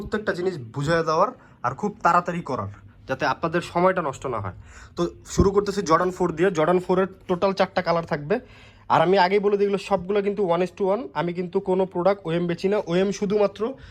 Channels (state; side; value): identical; both; correlation 1.00